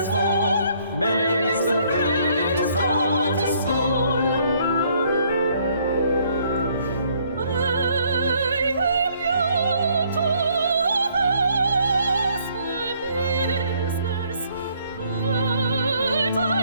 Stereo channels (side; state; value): both; inverted; correlation -0.65